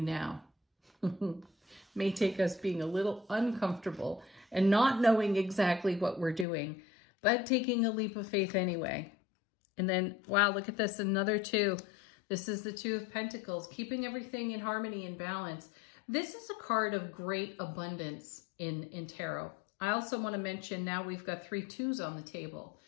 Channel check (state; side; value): drops out; right; at 6.5 s